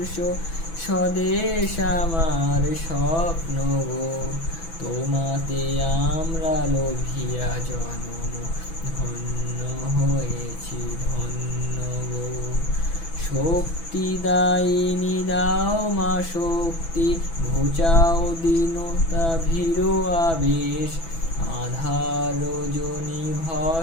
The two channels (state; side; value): late; right; 6.1 ms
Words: স্বদেশ আমার স্বপ্ন গো, তোমাতে আমরা লোভিয়া জনম ধন্য হয়েছি ধন্য গো। শক্তি দায়িনী দাও মা শক্তি, ঘুচাও দীনতা ভীরু আবেশ। আধার রজনী